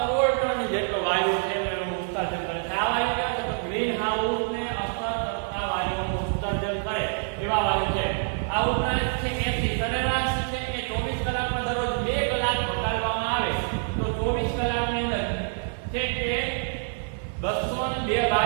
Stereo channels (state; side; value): silent; left; 61 dB below the other